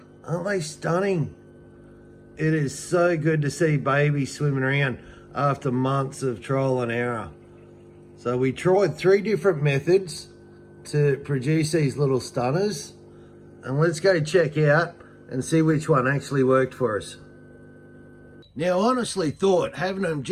Aren't they stunning? It is so good to see babies swimming around after months of trial and error. So we tried 3 different methods to produce these little stunners, and let's go check out and see which one actually worked for us. Now, I honestly thought having them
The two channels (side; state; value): both; identical; correlation 1.00